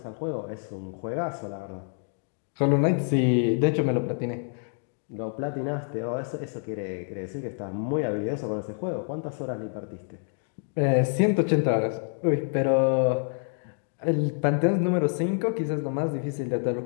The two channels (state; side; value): silent; right; 60 dB below the other